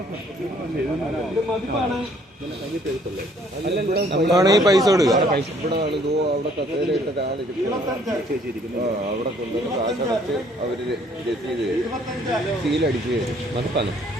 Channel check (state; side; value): normal; both; correlation 0.62